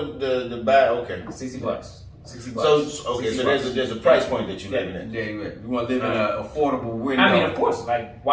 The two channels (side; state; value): both; identical; correlation 1.00